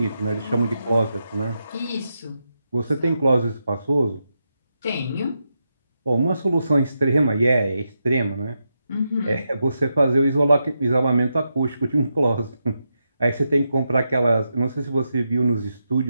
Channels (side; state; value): both; inverted; correlation -0.86